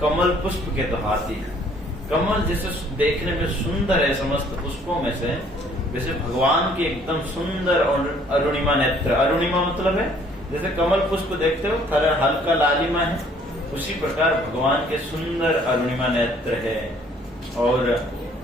कमल पुष्प के तो हाथी है। कमल जैसे देखने में सुंदर है समस्त पुष्पों में से, वैसे भगवान के एकदम सुंदर और अरुणिमा नेत्र। अरुणिमा मतलब है जैसे कमल पुष्प देखते हो थोड़ा हल्का लालिमा है, उसी प्रकार भगवान के सुंदर अरुणिमा नेत्र है। और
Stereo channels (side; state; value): both; normal; correlation 0.60